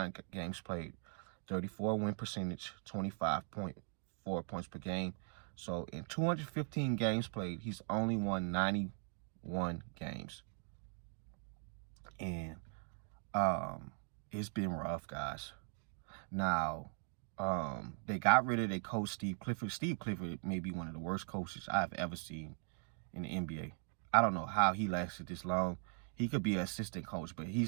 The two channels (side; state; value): left; silent; 51 dB below the other